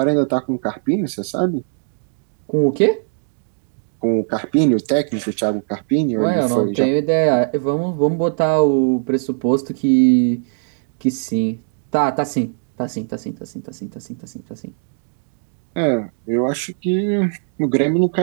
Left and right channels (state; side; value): silent; left; digital silence